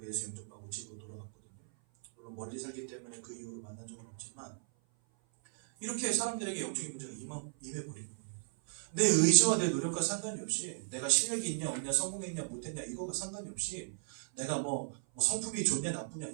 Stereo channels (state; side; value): silent; left; 54 dB below the other